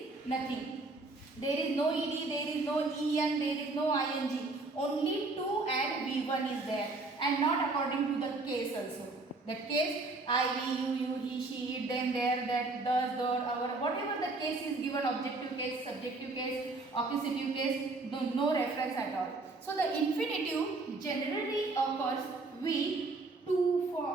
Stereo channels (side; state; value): left; quieter; 3.4 dB